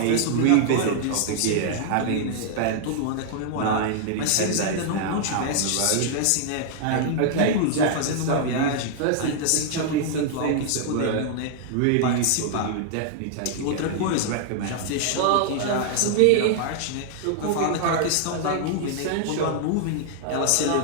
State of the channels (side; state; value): both; different; correlation 0.00